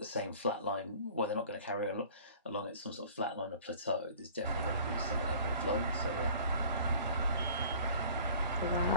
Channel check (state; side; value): inverted; both; correlation -0.48